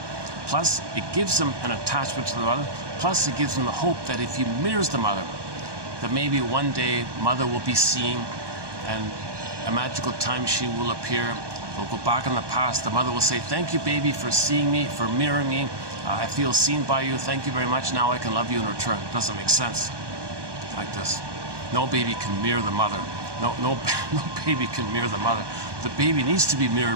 Plus, it gives him an attachment to the mother. Plus, it gives him the hope that if he mirrors the mother, that maybe one day mother will be seen and a magical time machine will appear. We'll go back in the past. The mother will say, thank you, baby, for seeing me, for mirroring me. I feel seen by you. Thank you very much. Now I can love you in return. It doesn't make sense like this. No baby can mirror the mother. No baby can mirror the mother. The baby needs to be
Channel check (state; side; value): late; left; 1.2 ms